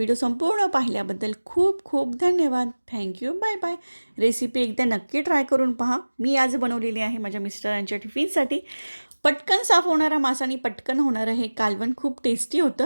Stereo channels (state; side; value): inverted; both; correlation -1.00